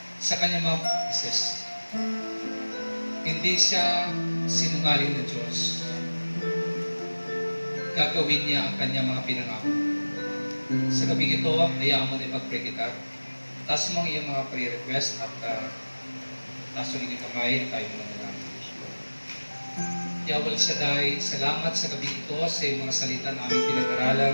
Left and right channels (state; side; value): inverted; both; correlation -1.00